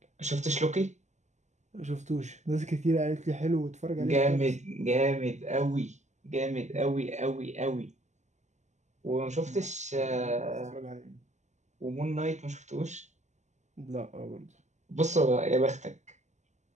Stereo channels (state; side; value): late; left; 0.34 ms